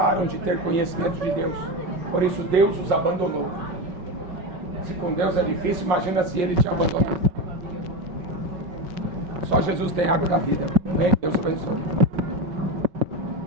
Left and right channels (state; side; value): late; left; 5.3 ms